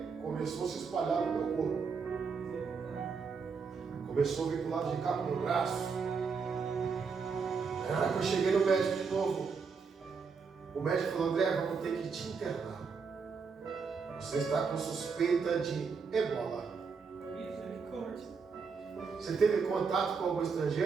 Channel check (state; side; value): quieter; left; 5.4 dB